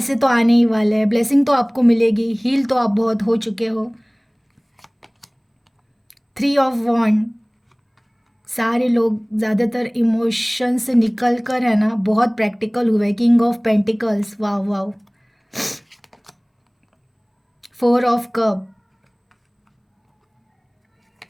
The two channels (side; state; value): both; identical; correlation 1.00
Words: तो आने ही वाले हैं, ब्लेसिंग तो आपको मिलेगी, हील तो आप बहुत हो चुके हो। थ्री ऑफ वॉन्ड। सारे लोग ज़्यादातर इमोशन से निकल कर है ना बहुत प्रैक्टिकल हुए। किंग ऑफ पेंटिकल्स, वाह वाह। Four of cup.